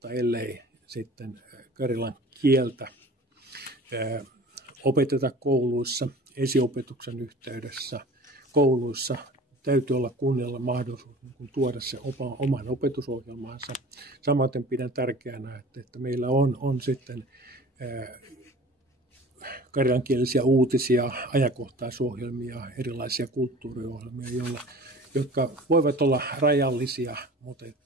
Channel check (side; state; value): both; normal; correlation 0.43